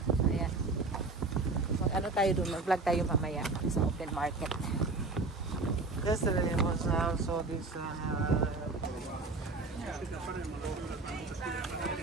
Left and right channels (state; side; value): quieter; left; 3.6 dB